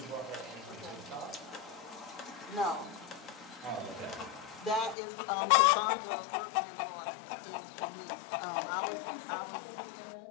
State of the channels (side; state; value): right; drops out; at 5.0 s